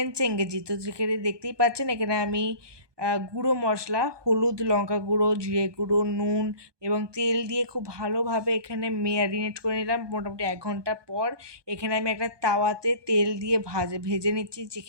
চেঙ্গেজি। তো যেখানে দেখতেই পাচ্ছেন এখানে আমি গুঁড়ো মশলা, হলুদ, লঙ্কা গুঁড়ো, জিরে গুঁড়ো, নুন এবং তেল দিয়ে খুব ভালোভাবে এখানে ম্যারিনেট করে নিলাম। মোটামুটি 1 ঘন্টা পর এখানে আমি একটা তাওয়াতে তেল দিয়ে ভেজে নিচ্ছি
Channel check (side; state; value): left; late; 1.2 ms